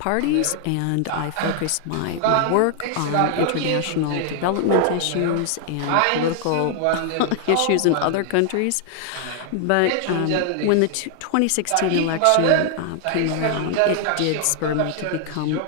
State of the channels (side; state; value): both; different; correlation 0.00